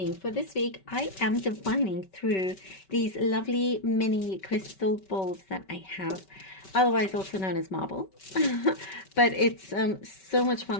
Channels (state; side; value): late; right; 5.2 ms